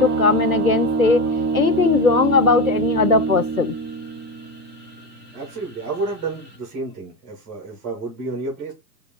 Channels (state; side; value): late; left; 1.2 ms